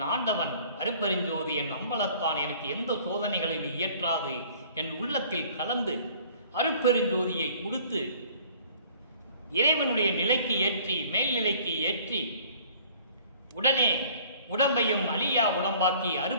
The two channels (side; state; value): both; inverted; correlation -0.53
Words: ஆண்டவன் அருப்பெருஞ்சோதி என் அம்பலத்தான் எனக்கு எந்த சோதனைகளையும் இயற்றாது என் உள்ளத்தில் கலந்து அருப்பெருஞ்சோதியை கொடுத்து இறைவனுடைய நிலைக்கு ஏற்றி, மேல்நிலைக்கு ஏற்றி, உடனே உடம்பையும் அழியா உடம்பாக்கி